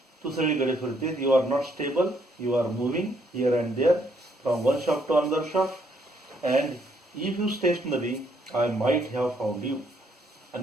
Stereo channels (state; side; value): normal; both; correlation 0.70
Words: तू सगळीकडे फिरतेस. You are not stable, you are moving here and there from one shop to another shop. And if you stationary I might have found you.